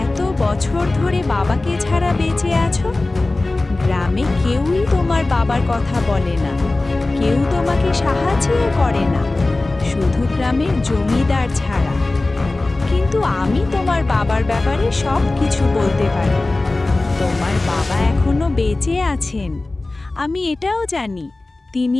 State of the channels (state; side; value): quieter; right; 3.0 dB